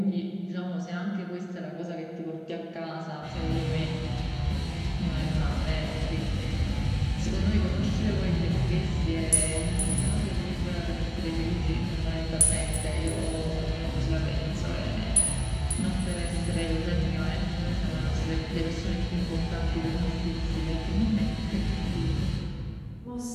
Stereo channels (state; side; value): identical; both; correlation 1.00